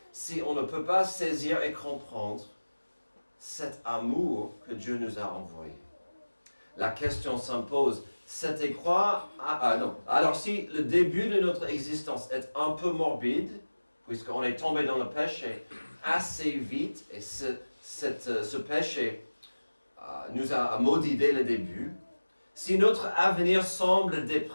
si on ne peut pas saisir et comprendre cet amour que Dieu nous a envoyé. La question s'impose, c'était quoi? Alors si le début de notre existence est un peu morbide, puisqu'on est tombé dans le péché assez vite, et ce péché nous a maudit dès le début, si notre avenir semble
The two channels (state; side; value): inverted; both; correlation -1.00